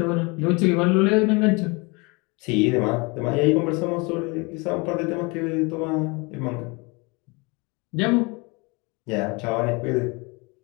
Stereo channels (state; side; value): quieter; right; 28.2 dB